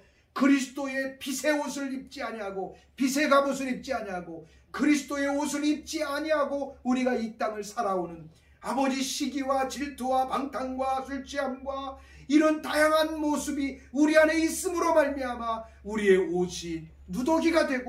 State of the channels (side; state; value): both; identical; correlation 1.00